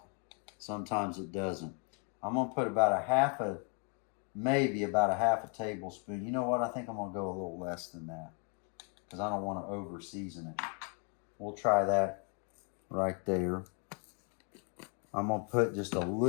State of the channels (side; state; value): right; quieter; 39.8 dB